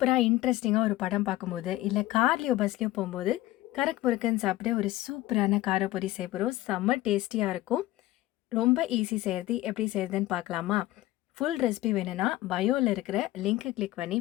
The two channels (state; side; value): quieter; right; 16.6 dB